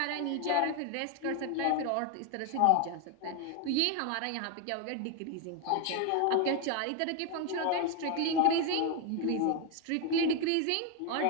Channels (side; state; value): both; different; correlation 0.01